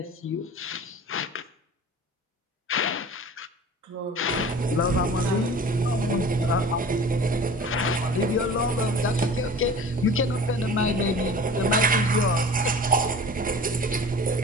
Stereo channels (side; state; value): both; normal; correlation 0.41